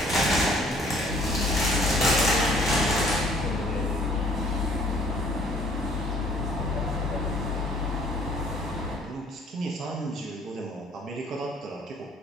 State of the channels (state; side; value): normal; both; correlation 0.58